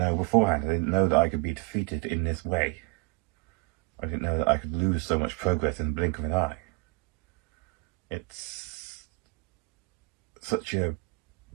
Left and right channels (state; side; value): quieter; left; 29.1 dB